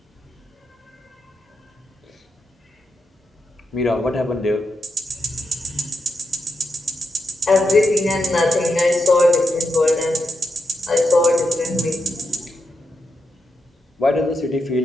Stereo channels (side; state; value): both; normal; correlation 0.85